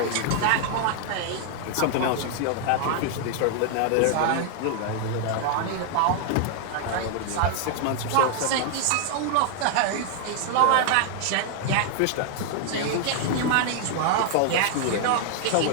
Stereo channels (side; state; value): both; different; correlation 0.00